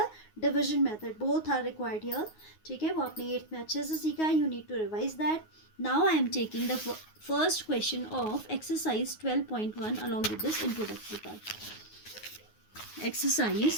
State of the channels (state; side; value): late; right; 9.5 ms